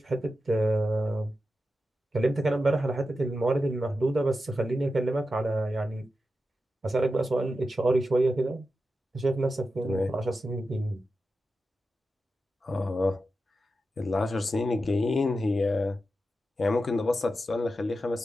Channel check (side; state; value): both; normal; correlation 0.90